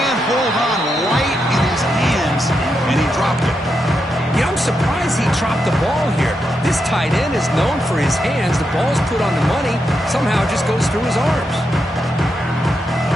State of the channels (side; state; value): both; normal; correlation 0.84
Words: hold on right in his hands, and he dropped it. Yeah, I'm surprised he dropped the ball here. This tight end is known for his hands. The ball's put on the money. Somehow it just goes through his arms.